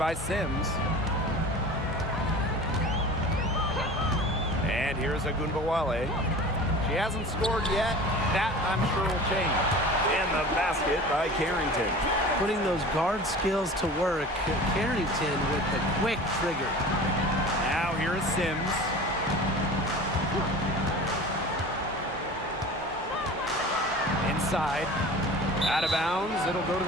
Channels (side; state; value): both; normal; correlation 0.38